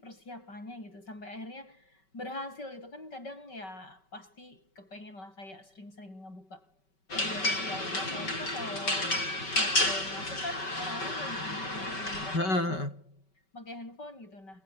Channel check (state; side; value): late; right; 5.3 ms